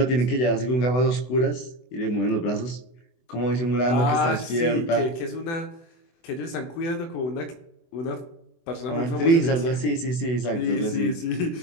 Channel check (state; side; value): late; right; 24 ms